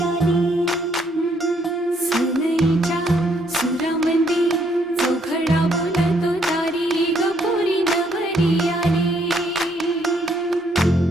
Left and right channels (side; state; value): both; normal; correlation 0.70